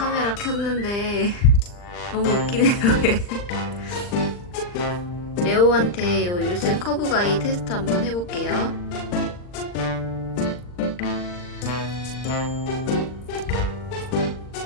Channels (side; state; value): right; late; 39 ms